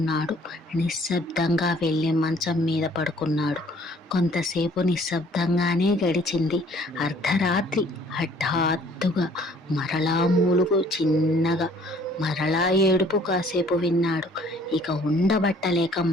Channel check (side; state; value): both; normal; correlation 0.58